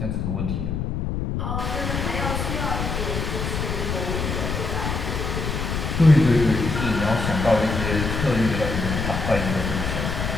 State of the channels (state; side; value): noise; left; rumble, 2 dB below the sound